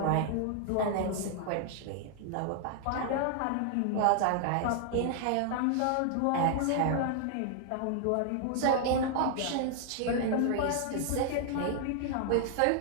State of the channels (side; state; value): both; different; correlation 0.00